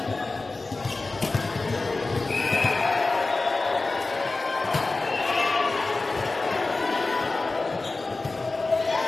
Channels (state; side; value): quieter; right; 3.5 dB